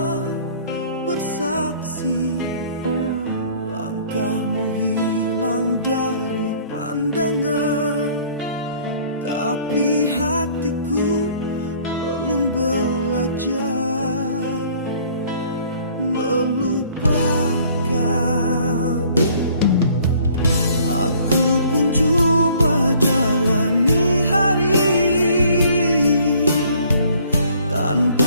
bersaksi. Langkahmu hilang dari pandangan, tapi hatiku belum belajar melupakan. Aku pun coba jalani hari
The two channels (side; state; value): both; inverted; correlation -0.57